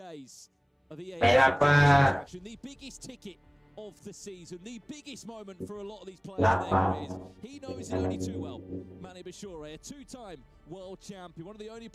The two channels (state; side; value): identical; both; correlation 1.00